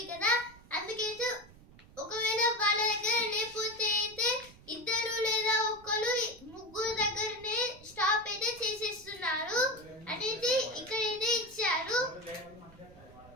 కదా. అందుకైతే ఒకవేళ వాళ్ళ దగ్గర లేకపోతే అయితే 2 లేదా 1 దగ్గరనే స్టాప్ అయితే చేసేస్తున్నారు అనేది ఇక్కడైతే ఇచ్చారు.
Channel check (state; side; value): noise; right; rumble, 22 dB below the sound